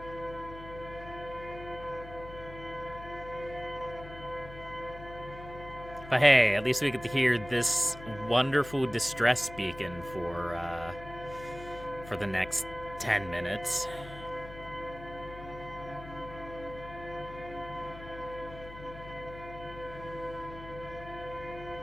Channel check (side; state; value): left; noise; hum, 14 dB below the sound